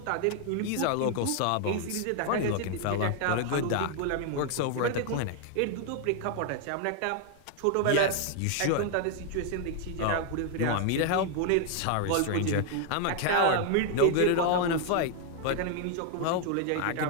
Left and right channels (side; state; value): both; different; correlation 0.00